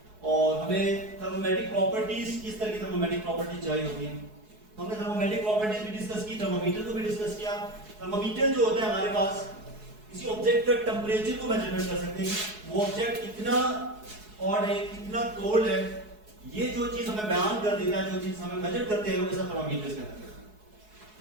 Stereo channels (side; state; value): left; late; 4.7 ms